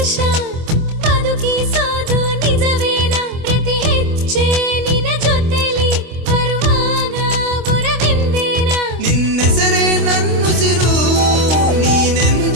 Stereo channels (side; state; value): left; late; 25 ms